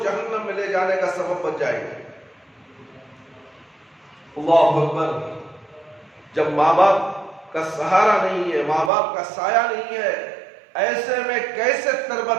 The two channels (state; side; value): drops out; left; at 8.9 s